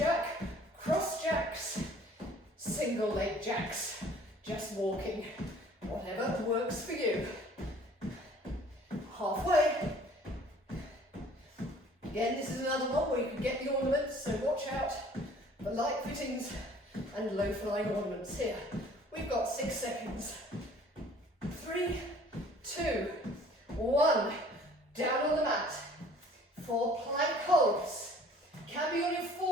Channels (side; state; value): both; normal; correlation 0.53